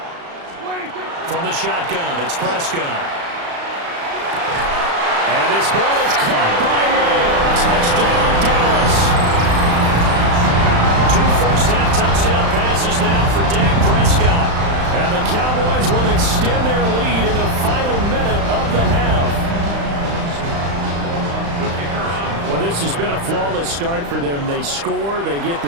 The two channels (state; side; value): late; left; 35 ms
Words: From the shotgun, it's Prescott. And this ball is caught by Lamb. Touchdown, Dallas. 2 first-half touchdown passes now for Dak Prescott. And the Cowboys will extend their lead in the final minute of the half. Well, this has been a flawless start for them. They score, they get